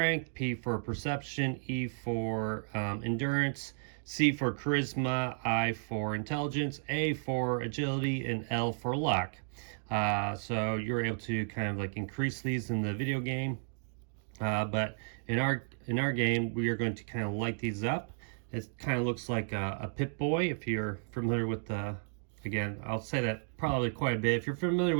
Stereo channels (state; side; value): silent; left; digital silence